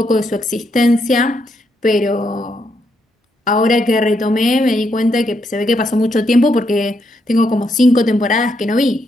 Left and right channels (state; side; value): normal; both; correlation 0.78